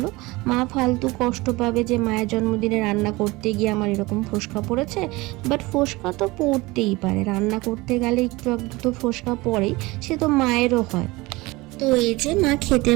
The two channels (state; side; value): quieter; left; 21.9 dB